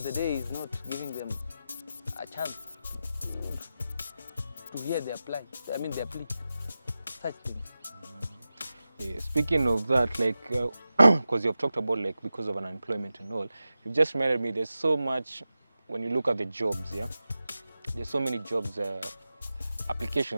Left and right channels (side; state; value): both; inverted; correlation -0.93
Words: the day is not giving them a chance to hear their plea. Such things. Yeah, speaking of that, like, because you've talked about like because of unemployment and all, you've just reminded me there's so much when you look at the jobs, yeah? There's so many jobs,